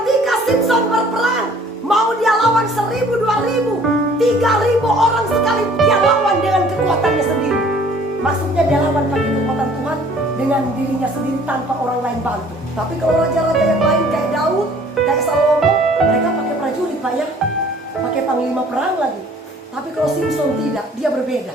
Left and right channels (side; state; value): both; normal; correlation 0.54